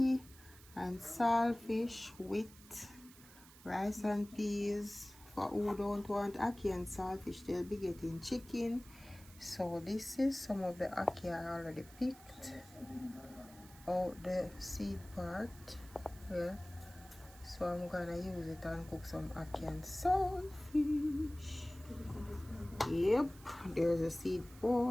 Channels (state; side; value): noise; right; hiss, 21 dB below the sound